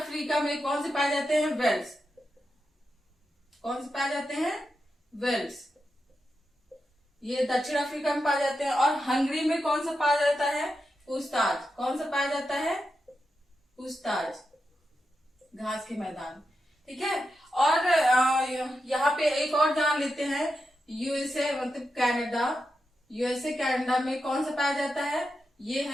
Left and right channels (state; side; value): normal; both; correlation 0.88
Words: में कौन से पाए जाते हैं? वेल्स। कौन से पाए जाते हैं? वेल्स। ये दक्षिण अफ्रीका में पाए जाते हैं। और हंगरी में कौन सा पाया जाता है? पुछताछ। कौन सा पाया जाता है? पुछताछ घास के मैदान। ठीक है, और यहाँ पे एक और जान लेते हैं, यूएसए मतलब कनाडा। यूएसए कनाडा में कौन सा पाया जाता है? ये